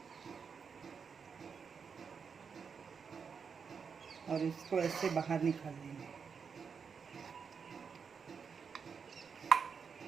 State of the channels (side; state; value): left; quieter; 6.1 dB